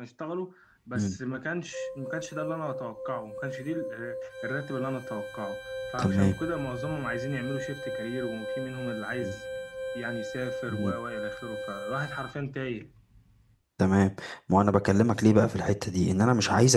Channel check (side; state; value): both; identical; correlation 1.00